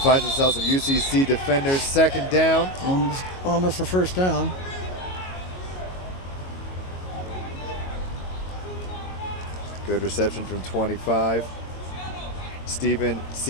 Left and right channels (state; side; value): late; right; 22 ms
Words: himself some UCC defenders. 2nd down. Almost a first down. Good reception from 25. Steven